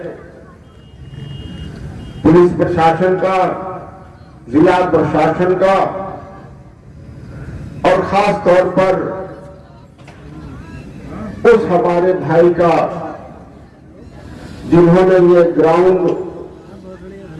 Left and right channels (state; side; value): identical; both; correlation 1.00